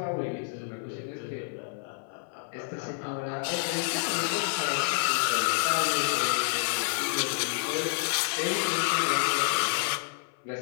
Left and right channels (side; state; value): right; silent; 55 dB below the other